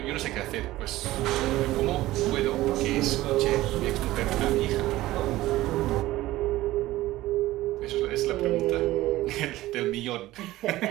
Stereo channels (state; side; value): quieter; left; 16.7 dB